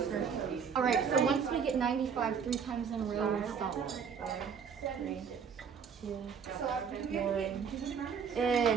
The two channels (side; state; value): left; quieter; 6.7 dB